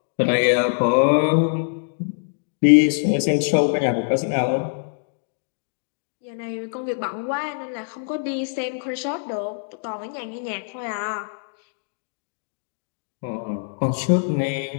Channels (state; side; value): silent; right; digital silence